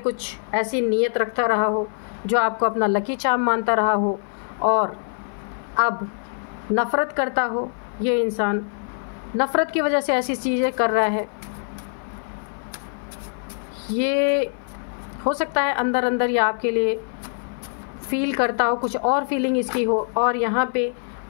ऐसी नीयत रखता रहा हो जो आपको अपना लकी चार्म मानता रहा हो, और अब नफ़रत करता हो। ये इंसान नफ़रत की वजह से ऐसी चीज़ें कर रहा है। ये हो सकता है अंदर अंदर ये आपके लिए फील करता हो, कुछ और फीलिंग इसकी हो, और यहाँ पे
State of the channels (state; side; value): silent; right; 57 dB below the other